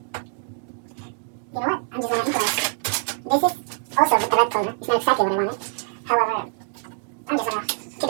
You know what? I'm just gonna improvise. This is also with the red color. It's not exactly what I wanted. However, I'm just gonna keep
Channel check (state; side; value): silent; left; 57 dB below the other